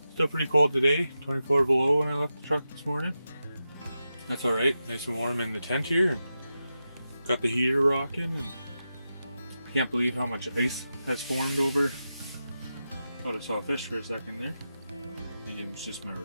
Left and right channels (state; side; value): inverted; both; correlation -0.90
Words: Still pretty cold today, 24 below when I left the truck this morning. That's alright, nice and warm in the tent here. And got the heater rocking, and I can't believe how much ice has formed over. Thought I saw a fish for a second there. Maybe it was just my